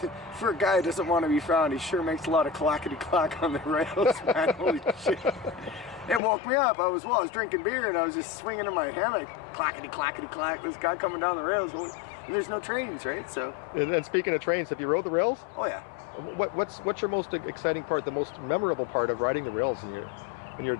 For a guy who doesn't want to be found, he sure makes a lot of clackety-clack on the rails, man. Holy shit. It woke me up. I was drinking beer, and I was just swinging in my hammock. Clackety-clackety-clack. This guy coming down the rails. And there's no trains, right? So. And speaking of trains, have you rode the rails? Oh, yeah. What's your most exciting part, the most memorable part of riding the rails in your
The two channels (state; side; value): drops out; right; at 6.2 s